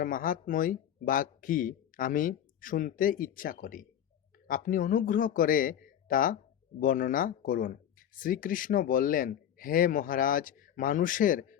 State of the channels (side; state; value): right; quieter; 10.0 dB